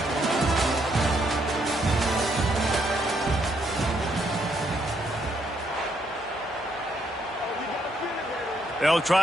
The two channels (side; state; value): both; normal; correlation 0.74